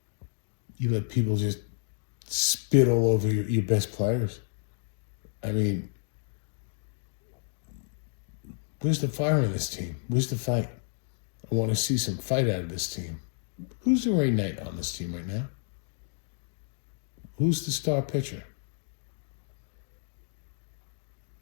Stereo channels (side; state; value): right; silent; digital silence